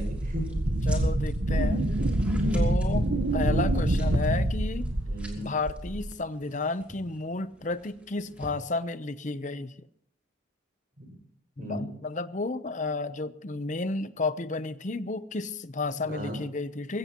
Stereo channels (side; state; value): both; normal; correlation 0.61